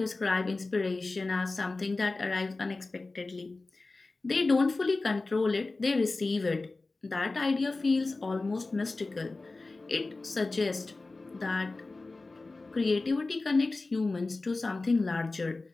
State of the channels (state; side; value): quieter; right; 3.4 dB